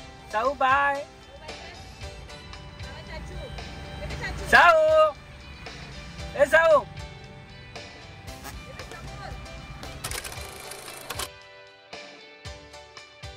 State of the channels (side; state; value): both; identical; correlation 1.00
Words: साऊ बाय. साऊ ए साऊ.